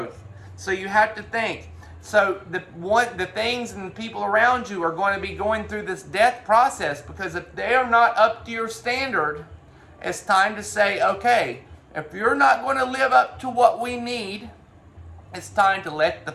So you have to think. So the things and the people around you are going to be going through this death process, because if they are not up to your standard, it's time to say, okay, if you're not going to live up to what we need, it's time to let the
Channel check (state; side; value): identical; both; correlation 1.00